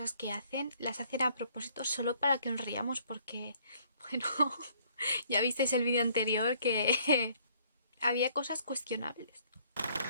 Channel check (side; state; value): both; inverted; correlation -0.63